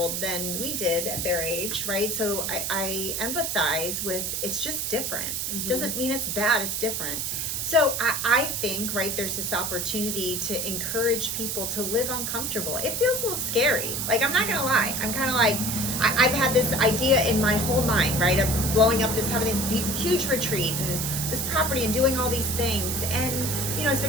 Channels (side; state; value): right; noise; hiss, 2 dB below the sound